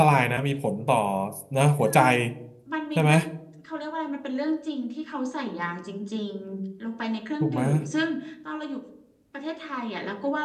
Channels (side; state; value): both; identical; correlation 1.00